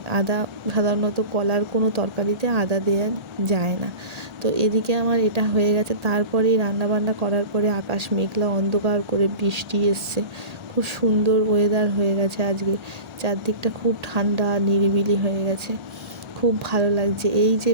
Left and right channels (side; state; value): left; late; 1.4 ms